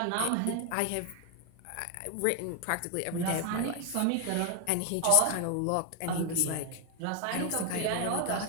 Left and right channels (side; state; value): both; different; correlation 0.01